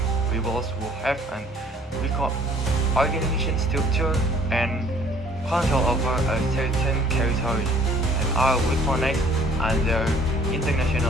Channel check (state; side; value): normal; both; correlation 0.57